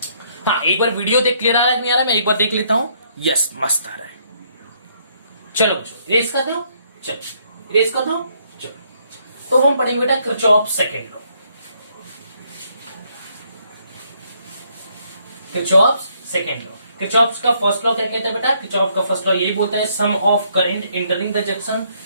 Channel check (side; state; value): both; inverted; correlation -0.70